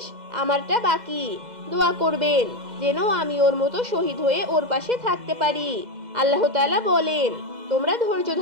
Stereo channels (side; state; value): left; late; 2.0 ms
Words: আমারটা বাকি। দোয়া করবেন যেন আমি ওর মতো শহীদ হয়ে ওর পাশে থাকতে পারি। আল্লাহ তাআলা বলেন, তোমরা ধৈর্য